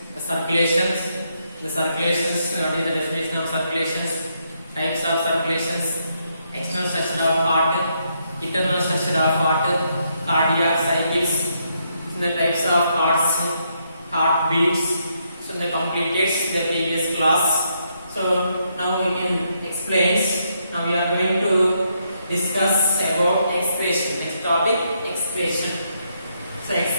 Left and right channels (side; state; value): both; inverted; correlation -0.77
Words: the circulations. The circulations, what is the definition of circulations? Types of circulations: external structure of heart, internal structure of heart, cardiac cycles, the types of hearts, heartbeats. So they completed the previous class. So now we can explain. Now we are going to discuss about expression. Next topic, expression. So